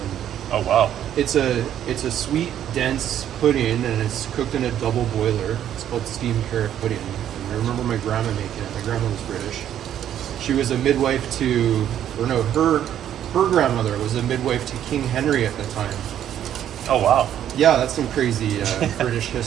Oh wow. it's a sweet, dense pudding, and it's cooked in a double boiler. It's called steamed carrot pudding. And I remember my grandma making it. My grandma was British. She was a midwife to, or no, her grandmother was a midwife to King Henry at the time. Oh wow. Yeah, that's some crazy British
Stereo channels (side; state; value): left; quieter; 10.6 dB